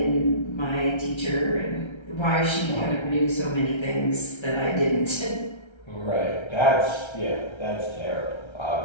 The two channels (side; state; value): right; late; 1.3 ms